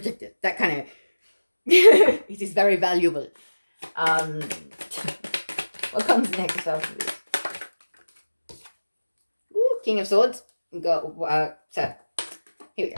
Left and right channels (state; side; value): inverted; both; correlation -1.00